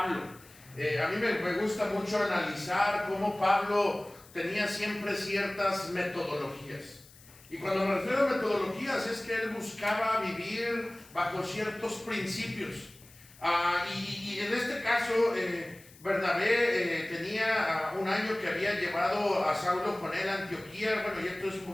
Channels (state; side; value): noise; left; hiss, 23 dB below the sound